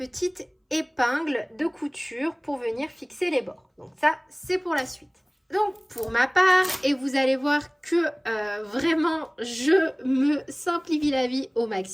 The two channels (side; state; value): both; identical; correlation 1.00